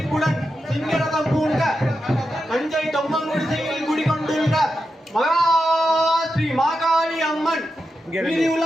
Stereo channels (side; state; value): both; normal; correlation 0.88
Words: சிங்கரதம் பூண்ட தஞ்சை தொம்மங்குடிசையில் குடிகொண்டுள்ள மகா ஸ்ரீ மாகாளி அம்மன்